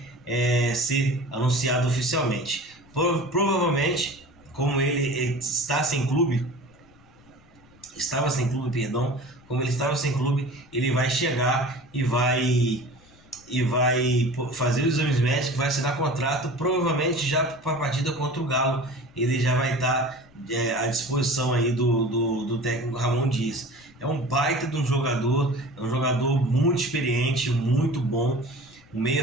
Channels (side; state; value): left; noise; rumble, 27 dB below the sound